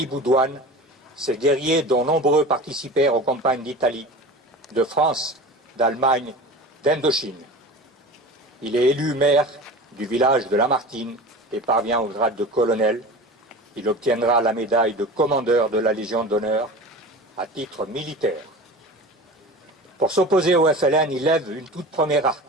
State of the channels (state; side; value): normal; both; correlation 0.34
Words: Boudouane, ces guerriers dont nombreux participèrent aux campagnes d'Italie, de France, d'Allemagne, d'Indochine. Il est élu maire du village de Lamartine et parvient au grade de colonel. Il obtiendra la médaille de commandeur de la Légion d'honneur à titre militaire. Pour s'opposer au FLN, il lève une toute première